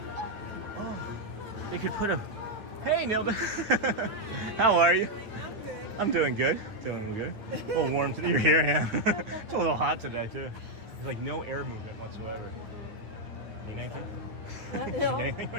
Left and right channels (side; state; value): left; late; 9.3 ms